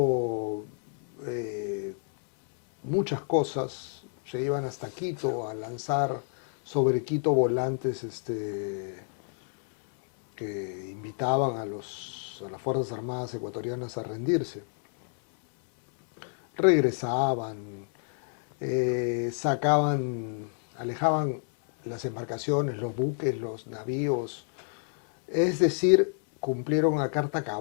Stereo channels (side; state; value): right; silent; 59 dB below the other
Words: muchas cosas, se iban hasta Quito a lanzar sobre Quito volantes que invitaban a las Fuerzas Armadas ecuatorianas a rendirse. Regresaban, alejaban las embarcaciones, los buques, los navíos, es decir, cumplieron a carta